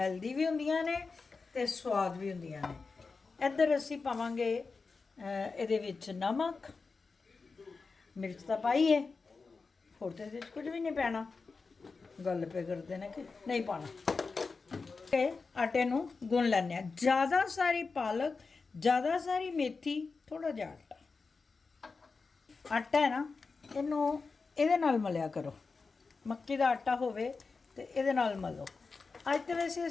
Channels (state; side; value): quieter; right; 4.4 dB